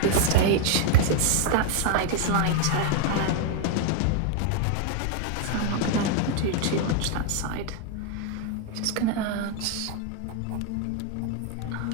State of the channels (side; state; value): both; different; correlation 0.00